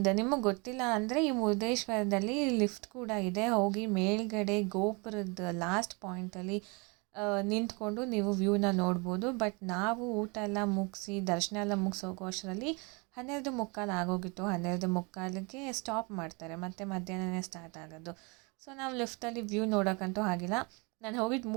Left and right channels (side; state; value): left; quieter; 30.2 dB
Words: ನಿಮಗೆ ಗೊತ್ತಿಲ್ಲ ಅಂದರೆ ಈ ಮುರುಡೇಶ್ವರದಲ್ಲಿ ಲಿಫ್ಟ್ ಕೂಡ ಇದೆ. ಹೋಗಿ ಮೇಲ್ಗಡೆ ಗೋಪುರದ ಲಾಸ್ಟ್ ಪಾಯಿಂಟಲ್ಲಿ ನಿಂತ್ಕೊಂಡು ನೀವು ವ್ಯೂನ ನೋಡ್ಬೋದು. ಬಟ್ ನಾವು ಊಟ ಎಲ್ಲ ಮುಗಿಸಿ ದರ್ಶನ ಎಲ್ಲ ಮುಗಿಸೋಗೋ ಅಷ್ಟರಲ್ಲಿ 12:15 ಆಗೋಗಿತ್ತು. 12:15ಗೆ ಸ್ಟಾಪ್ ಮಾಡ್ತಾರೆ, ಮತ್ತು ಮಧ್ಯಾಹ್ನನೇ ಸ್ಟಾರ್ಟ್ ಆಗೋದು. ಸೊ ನಾವು ಲಿಫ್ಟಲ್ಲಿ ವ್ಯೂ ನೋಡೋಕ್ಕಂತೂ ಆಗಿಲ್ಲ. ನಾನು ಹೋಗಿದ್ದು